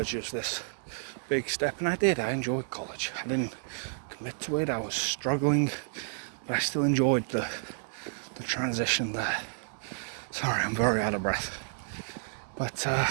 as this big step, and I did. I enjoyed college. I didn't commit to it. I was struggling, but I still enjoyed the transition there. Sorry, I'm very out of breath. But,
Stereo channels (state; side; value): silent; left; digital silence